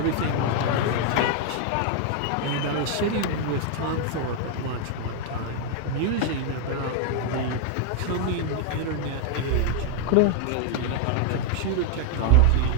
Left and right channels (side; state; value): both; different; correlation 0.00